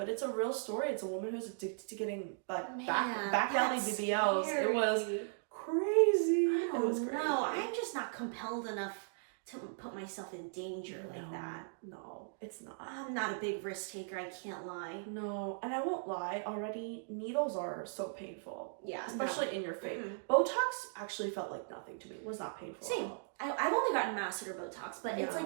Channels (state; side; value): silent; left; digital silence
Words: it's a real story. It's a woman who's addicted to getting back alley BBLs. Scary. It was crazy. I don't know. I'm just not compelled enough to put myself in danger like that. No, it's not. I'm not a big risk taker. I can't lie. No, and I won't lie. Already, needles are so painful. Yeah, especially in your face. Botox actually felt like nothing to me. It was not painful. Same. I've only gotten masseter Botox, but it's